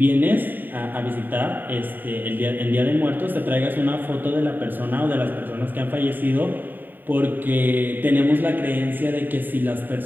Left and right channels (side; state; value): left; late; 0.091 ms